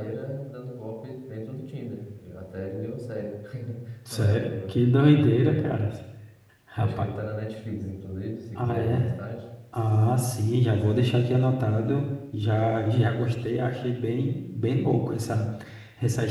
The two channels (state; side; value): identical; both; correlation 1.00